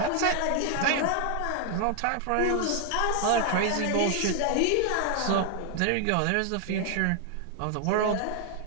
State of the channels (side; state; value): both; different; correlation 0.00